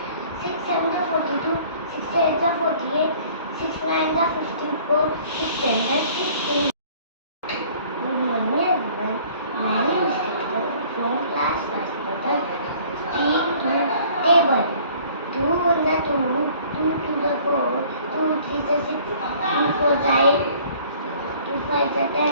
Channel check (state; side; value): inverted; both; correlation -0.53